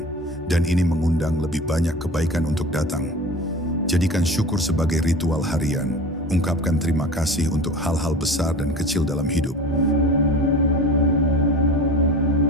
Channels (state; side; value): normal; both; correlation 0.35